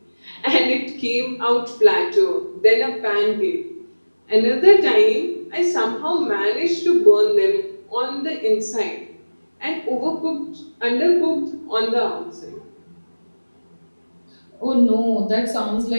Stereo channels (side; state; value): both; inverted; correlation -1.00